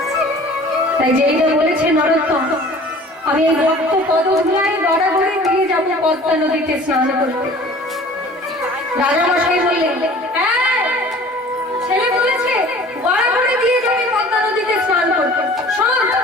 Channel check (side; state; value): both; normal; correlation 0.46